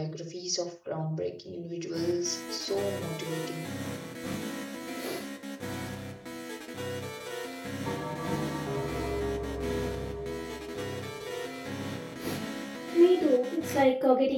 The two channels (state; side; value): identical; both; correlation 1.00